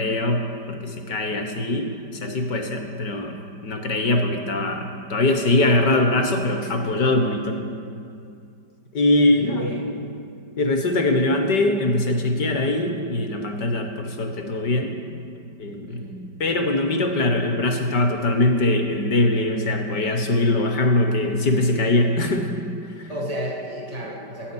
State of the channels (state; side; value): late; right; 5.1 ms